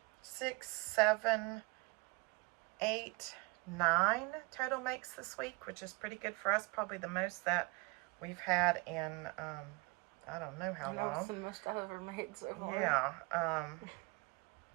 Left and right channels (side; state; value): left; quieter; 26.6 dB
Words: 6, 7, 8, 9 total makes this week, which is pretty good for us. Probably the most that we've had in I don't know how long. That's the most I've ever made so far. Yeah.